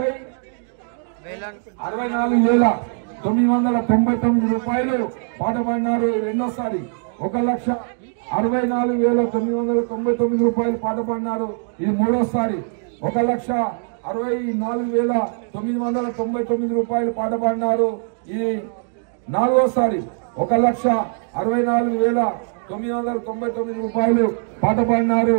రూపాయలు పాట పాడినారు రెండోసారి. 1,64,999 రూపాయలు పాట పాడినారు ఇది మూడోసారి. 1,64,999 రూపాయలు పాట పాడినారు ఇది నాలుగోసారి. 1,64,999 రూపాయలు పాట పాడినారు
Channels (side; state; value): left; silent; 61 dB below the other